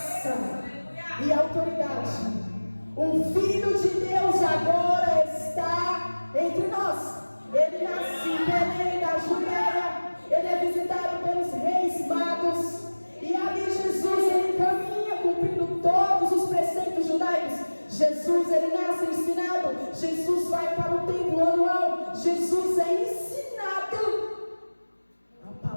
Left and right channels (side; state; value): both; inverted; correlation -1.00